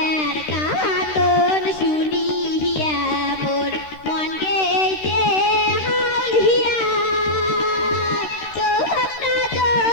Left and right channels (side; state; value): right; late; 13 ms